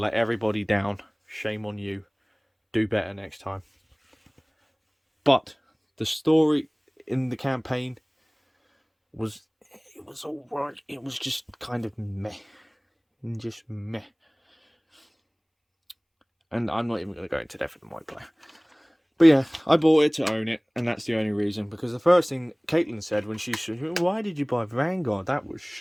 everybody down. Shame on you. Do better next time. But the story in the campaign was alright. It was just kind of meh. Just meh. And I'm not even going to go into depth with the multiplayer. But yeah, I bought it to own it, and that's the only reason. Because the first thing Caitlin said when she said, why did you buy Vanguard? That was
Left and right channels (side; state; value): both; identical; correlation 1.00